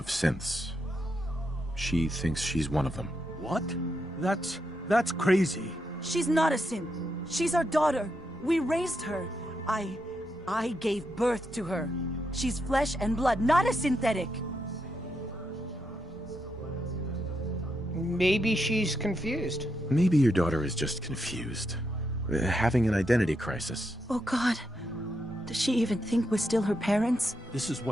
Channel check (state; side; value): normal; both; correlation 0.82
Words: synths. She thinks she's one of them. What? That's crazy. She's not a synth. She's our daughter. We raised her. I gave birth to her. She's flesh and blood, not a synthetic. Maybe she's confused. Maybe your daughter is just confused. Having an identity crisis. Oh God. Does she even think we're still her parents? This is